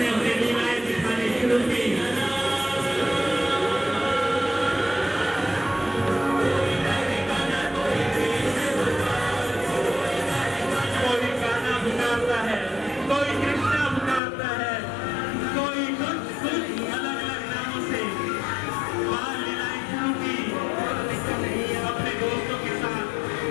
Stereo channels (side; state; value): right; drops out; at 14.2 s